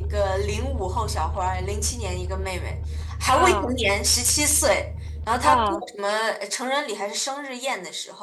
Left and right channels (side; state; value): both; identical; correlation 1.00